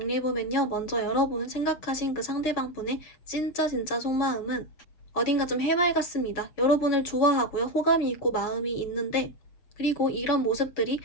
먼저 여러분 생각하신 그 상대방분의 진짜 속마음은 어딘가 좀 해맑았습니다. 여러분을 좋아하고요. 호감이 있고 마음이 있는데 그리고 이런 모습들이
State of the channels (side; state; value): right; late; 7.1 ms